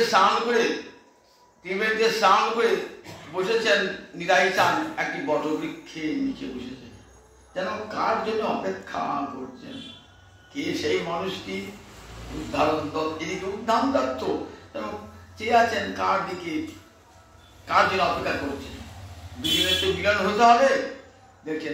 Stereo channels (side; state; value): both; identical; correlation 1.00